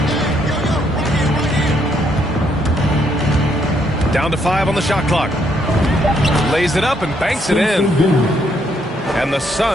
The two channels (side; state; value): both; normal; correlation 0.72